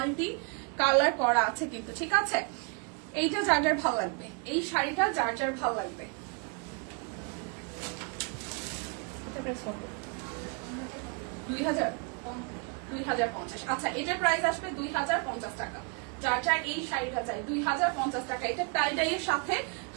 কালার করা আছে কিন্তু, ঠিক আছে। এইটা যার যার ভালো লাগবে, এই শাড়িটা যার যার ভালো লাগবে, এটা প্রাইস কত? 2050। আচ্ছা, এটার প্রাইস আসবে 2050 টাকা। যার যার এই শাড়িটা চাই 2050 টাকা। এটা টাইডাইয়ের সাথে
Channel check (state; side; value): quieter; left; 35.9 dB